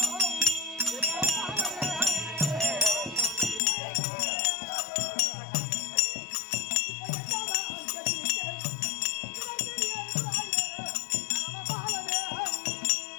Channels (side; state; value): right; drops out; at 3.6 s